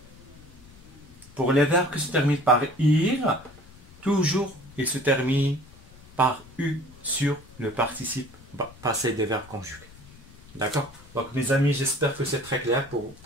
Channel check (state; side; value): noise; left; rumble, 22 dB below the sound